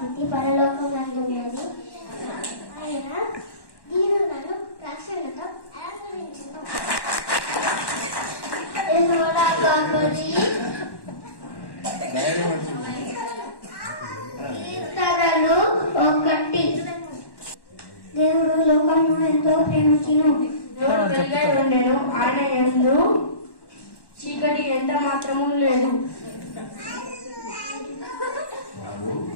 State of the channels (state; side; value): late; right; 1.1 ms